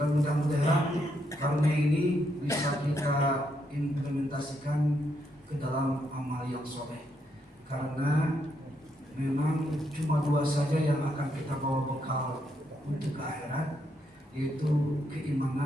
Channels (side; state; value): both; normal; correlation 0.77